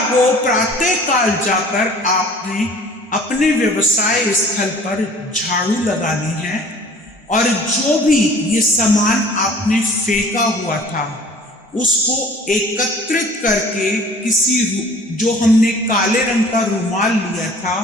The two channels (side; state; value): both; normal; correlation 0.49